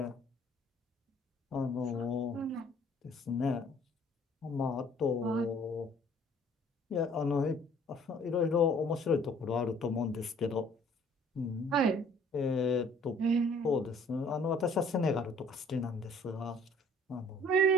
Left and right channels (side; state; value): both; normal; correlation 0.56